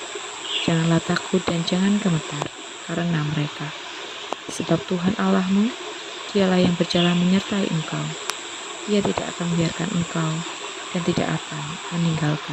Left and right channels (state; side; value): identical; both; correlation 1.00